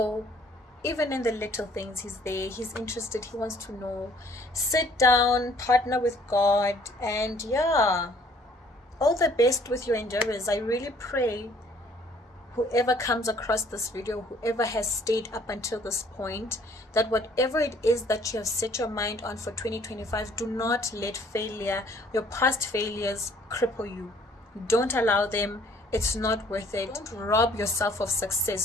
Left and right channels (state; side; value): normal; both; correlation 0.58